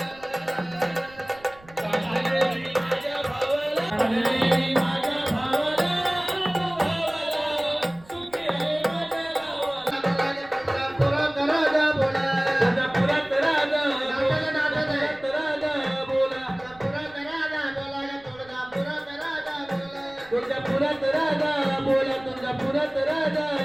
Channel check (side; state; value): right; noise; rumble, 25 dB below the sound